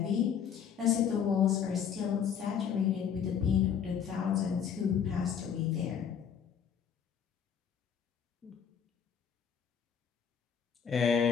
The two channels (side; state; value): right; quieter; 7.8 dB